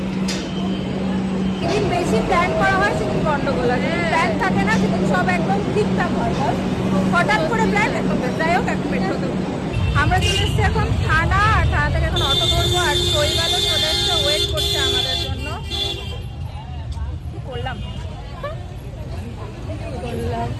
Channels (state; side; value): identical; both; correlation 1.00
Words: যেদিন বেশি প্ল্যান করা হয় সেদিন গন্ডগোল হয়, প্ল্যান থাকে না সেদিন সব একদম ঠিকঠাক হয়। হঠাৎ করে প্ল্যান এখন, যাই হোক এখন মেট্রোতে আমরা চলে এসেছি এখন থানা, আর থানা থেকে এখন অটো করবো। আর শৈবালও চলে এসছে, ওয়েট করছে আমাদের জন্য। কি করলাম